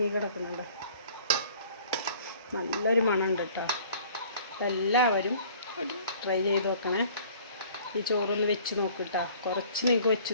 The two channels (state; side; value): inverted; both; correlation -0.52